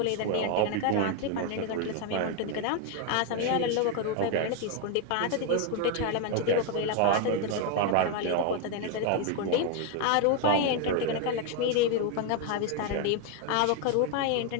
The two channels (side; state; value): both; different; correlation 0.01